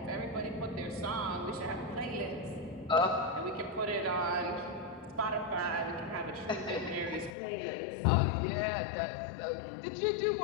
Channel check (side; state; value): right; drops out; at 7.4 s